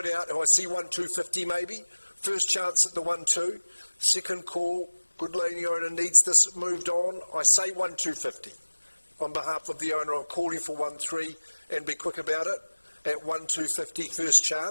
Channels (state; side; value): inverted; both; correlation -1.00